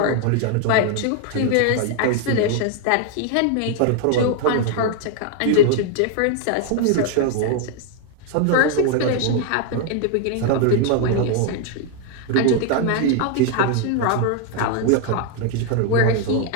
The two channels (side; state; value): both; different; correlation 0.00